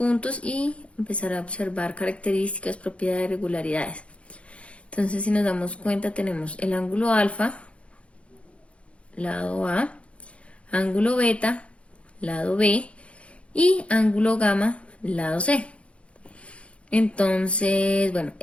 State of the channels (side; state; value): right; late; 0.061 ms